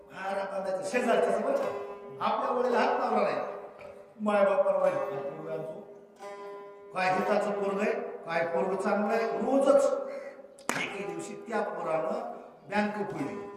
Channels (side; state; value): both; identical; correlation 1.00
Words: हारा बांधायचं शेजारच्या बरं आपल्या वडील हात लावला नाही माय बापाला काय हिताचं पोरग आहे काय पोरग चांगलं आहे रोजच एके दिवशी त्या पोरानं बँक फोडली